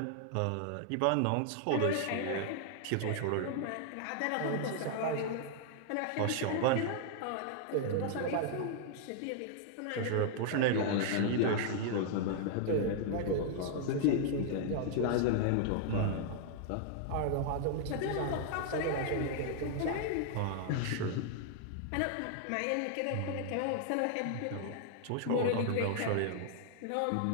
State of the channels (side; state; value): both; different; correlation -0.01